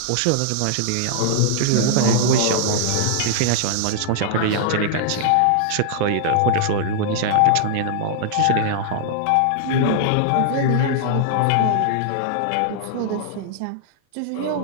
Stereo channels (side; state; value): both; different; correlation -0.01